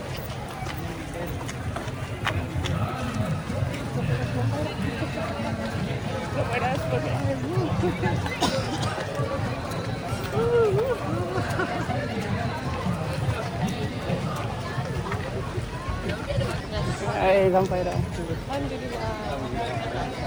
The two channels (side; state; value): both; identical; correlation 1.00